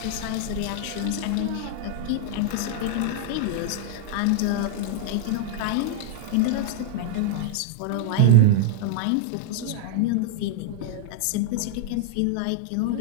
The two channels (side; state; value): both; different; correlation -0.01